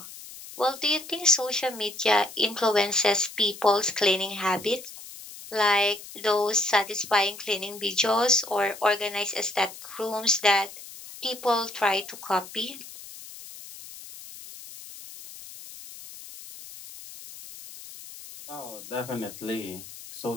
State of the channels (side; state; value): left; noise; hiss, 15 dB below the sound